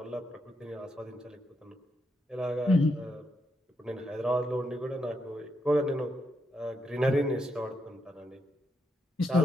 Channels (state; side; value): normal; both; correlation 0.81